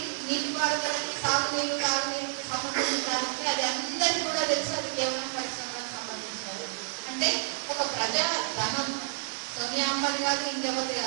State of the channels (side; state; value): left; silent; digital silence